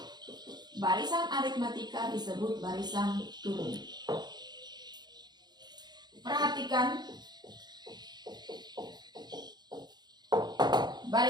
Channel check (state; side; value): late; left; 0.20 ms